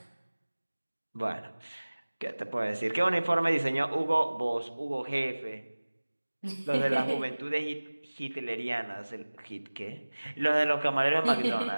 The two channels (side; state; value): both; inverted; correlation -1.00